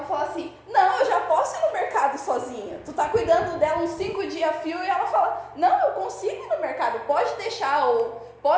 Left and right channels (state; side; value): identical; both; correlation 1.00